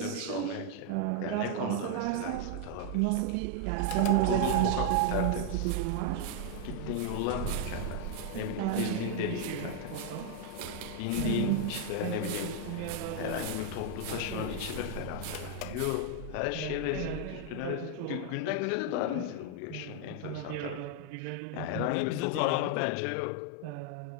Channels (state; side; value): different; both; correlation 0.00